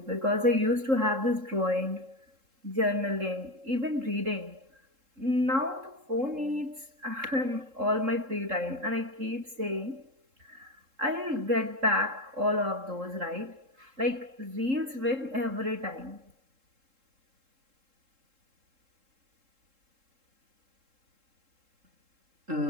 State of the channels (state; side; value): late; left; 3.7 ms